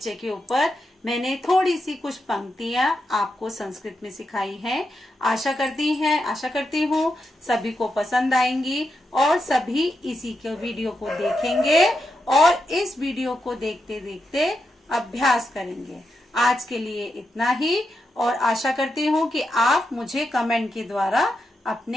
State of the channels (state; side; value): normal; both; correlation 0.86